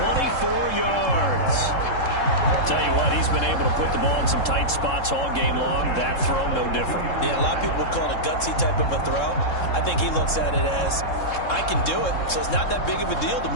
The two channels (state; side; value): late; right; 3.7 ms